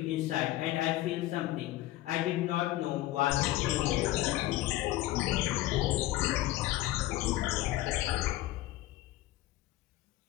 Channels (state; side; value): quieter; right; 16.1 dB